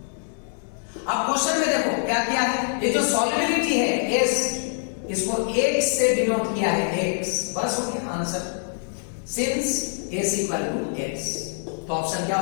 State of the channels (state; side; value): silent; right; digital silence